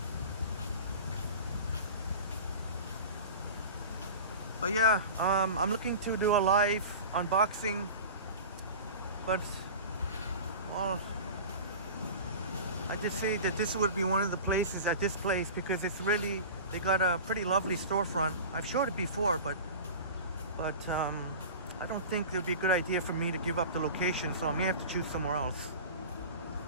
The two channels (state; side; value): inverted; both; correlation -0.34